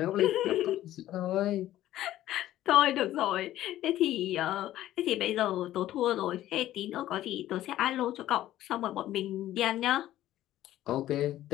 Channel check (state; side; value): quieter; right; 13.8 dB